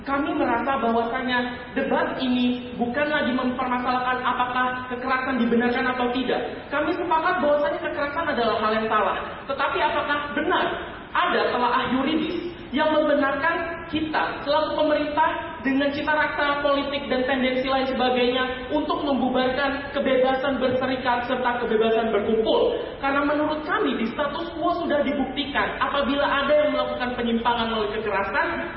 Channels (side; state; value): both; identical; correlation 1.00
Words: Kami merasa bahwasanya debat ini bukan lagi mempermasalahkan apakah kekerasan dibenarkan atau tidak. Kami sepakat bahwasanya kekerasan adalah hal yang salah. Tetapi apakah benar ada telaah yuridis yang membenarkan kita selaku pemerintah dengan cita rasa politik dan tendensi lain sebagainya untuk membubarkan kebebasan berserikat serta kebebasan berkumpul? Karena menurut kami di status quo sudah dibuktikan apabila ada yang melakukan penyimpangan melalui kekerasan